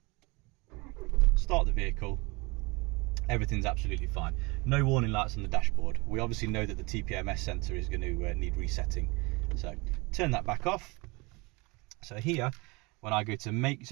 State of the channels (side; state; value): left; quieter; 26.3 dB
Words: start the vehicle, everything's absolutely fine. No warning lights on the dashboard. We obviously know that the TPMS sensor is going to need resetting, so turn that back off. So here, when I go to make,